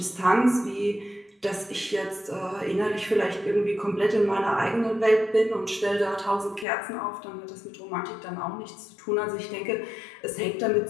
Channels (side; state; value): right; drops out; at 6.7 s